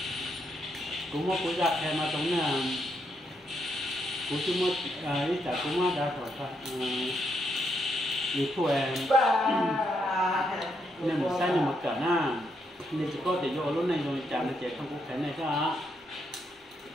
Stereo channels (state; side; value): normal; both; correlation 0.77